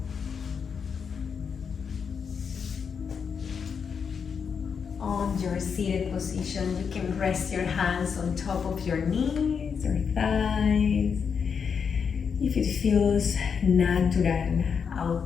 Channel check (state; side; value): quieter; right; 6.4 dB